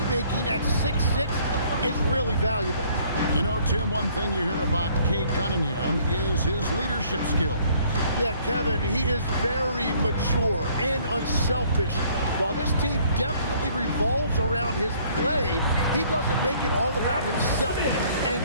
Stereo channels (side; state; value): both; inverted; correlation -0.60